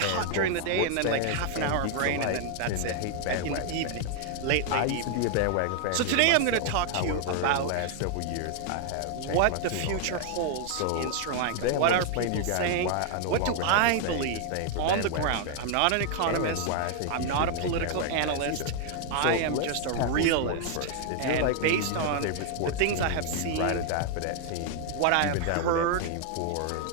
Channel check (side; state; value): both; different; correlation 0.00